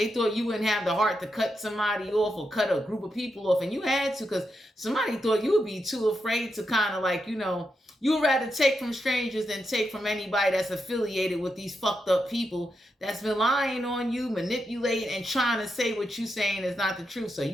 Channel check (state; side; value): normal; both; correlation 0.85